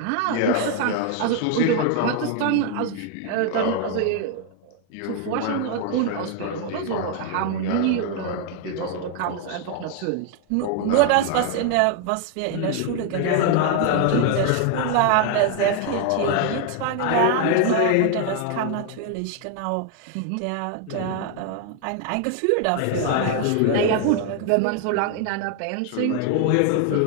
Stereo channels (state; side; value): different; both; correlation 0.00